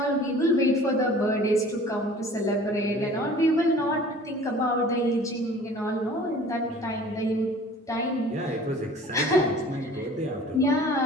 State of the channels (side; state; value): both; normal; correlation 0.47